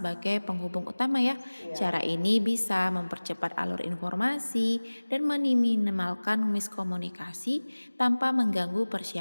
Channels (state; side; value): inverted; both; correlation -1.00